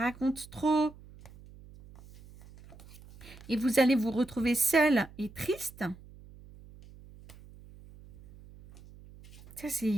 trop. Et vous allez vous retrouver seul et triste. Ça,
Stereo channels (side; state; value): right; noise; hum, 21 dB below the sound